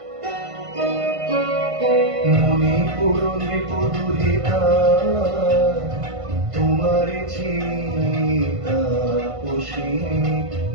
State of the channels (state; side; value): late; left; 1.5 ms